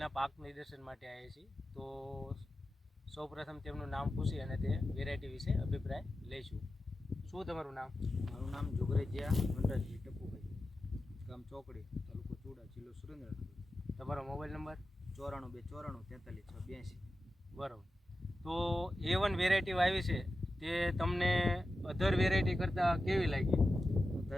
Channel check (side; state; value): both; normal; correlation 0.92